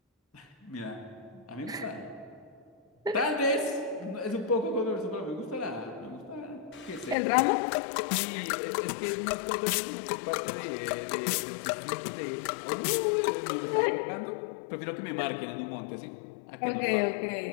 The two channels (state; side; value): drops out; right; at 7.2 s